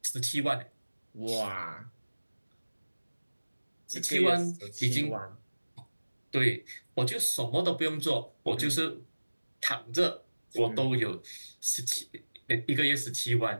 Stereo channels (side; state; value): both; inverted; correlation -1.00